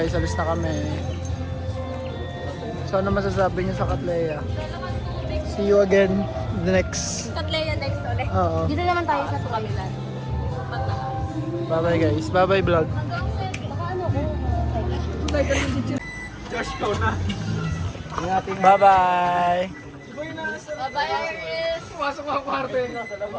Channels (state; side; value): identical; both; correlation 1.00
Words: Alis na kami. So, ano masasabi niyo sa Katleya? See you again the next. Katleya next ulit. Oo. Dito naman tayo sa Tukamilan. Bye-bye guys. Bye-bye vlog. Bye-bye.